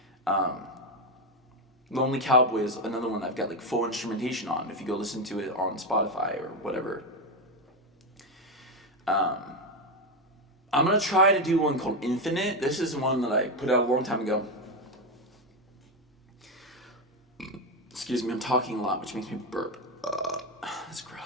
Lonely Cowboy is another one I've got full instrumentation on. If you go listen to it on Spotify or whatever. I'm gonna try to do one called Infinite. This is one that I put out a long time ago. Excuse me, I'm talking a lot, which makes me burp. That's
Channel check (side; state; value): both; normal; correlation 0.09